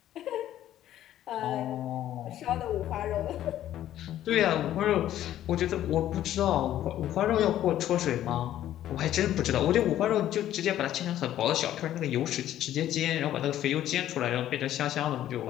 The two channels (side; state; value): right; quieter; 12.3 dB